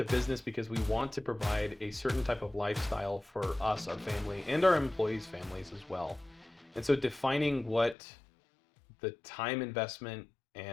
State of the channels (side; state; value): right; drops out; at 8.0 s